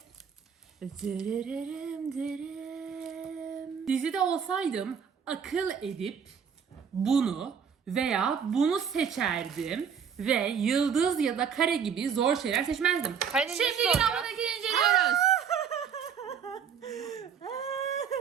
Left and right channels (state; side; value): quieter; left; 7.2 dB